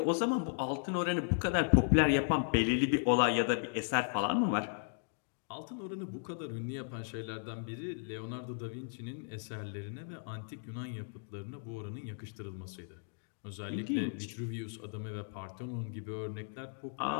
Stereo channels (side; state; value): right; silent; digital silence